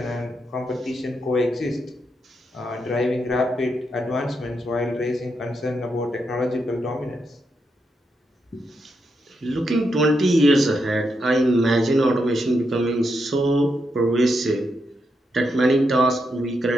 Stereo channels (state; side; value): normal; both; correlation 0.82